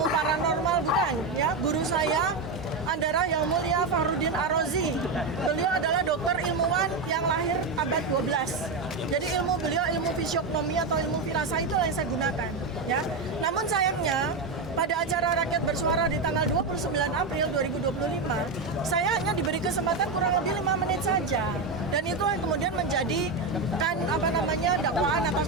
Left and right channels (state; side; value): quieter; left; 3.7 dB